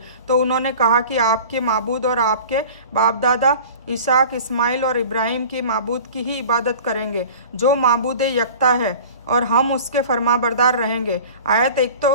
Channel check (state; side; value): inverted; both; correlation -0.41